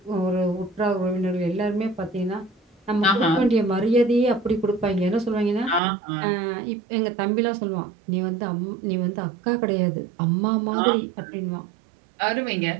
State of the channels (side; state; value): left; drops out; at 5.8 s